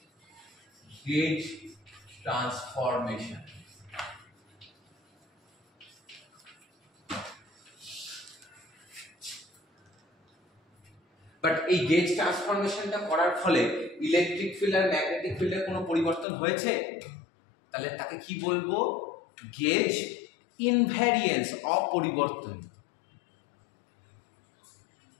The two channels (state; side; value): drops out; right; at 16.2 s